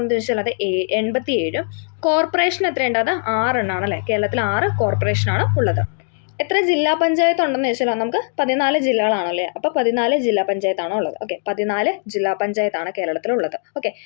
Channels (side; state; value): right; silent; digital silence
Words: ചോദിച്ചാൽ അത് 87. കോർപ്പറേഷൻ എത്രയുണ്ട്? അത് 6 എണ്ണമാണ് അല്ലേ. കേരളത്തിൽ 6 കോർപ്പറേഷനാണ് ഉള്ളത്. എത്ര ജില്ലാ പഞ്ചായത്ത് ഉണ്ടെന്ന് ചോദിച്ചാൽ നമുക്ക് 14 ജില്ലകളാണല്ലേ. അപ്പോൾ 14 ജില്ലാ പഞ്ചായത്താണോ ഉള്ളത്. ഓക്കെ. 14 ജില്ലാ പഞ്ചായത്താണ് കേരളത്തിലുള്ളത്. ഓക്കെ.